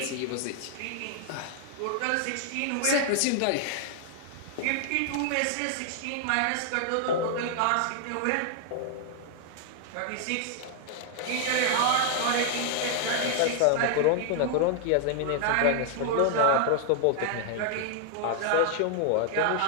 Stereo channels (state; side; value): different; both; correlation 0.00